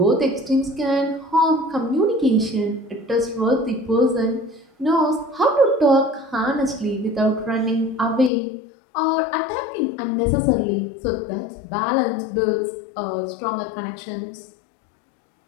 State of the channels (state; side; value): drops out; right; at 8.3 s